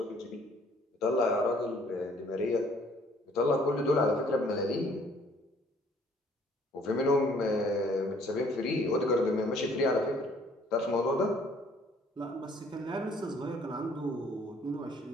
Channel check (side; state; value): both; normal; correlation 0.60